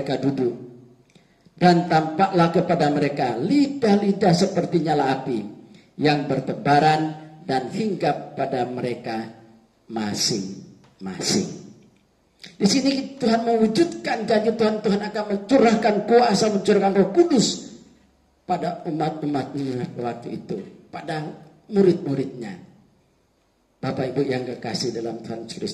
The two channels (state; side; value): identical; both; correlation 1.00